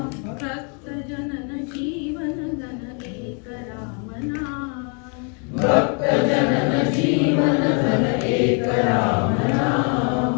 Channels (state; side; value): quieter; right; 38.5 dB